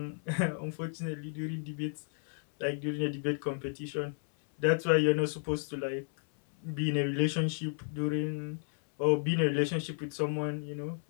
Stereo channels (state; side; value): silent; right; 56 dB below the other